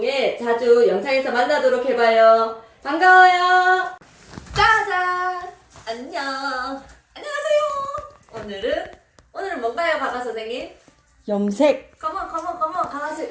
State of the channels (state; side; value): identical; both; correlation 1.00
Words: 자주 영상에서 만나도록 해봐요. 반가워요. 짜잔. 안녕. 안녕하세요. 오늘은 뭔가요, 가가 선생님? 염색. 컴온 가가씨